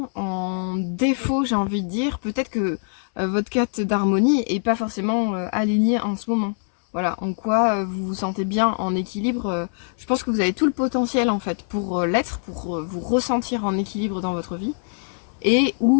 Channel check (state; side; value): silent; right; 61 dB below the other